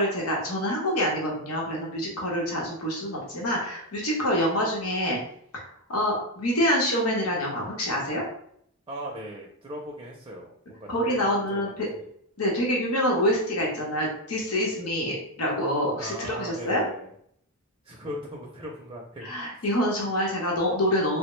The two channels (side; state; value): both; normal; correlation 0.04